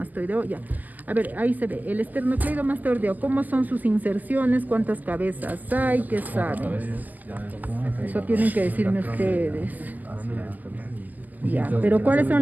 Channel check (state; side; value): late; left; 0.082 ms